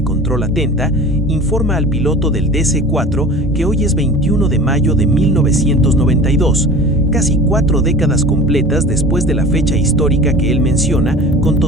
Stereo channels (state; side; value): normal; both; correlation 0.39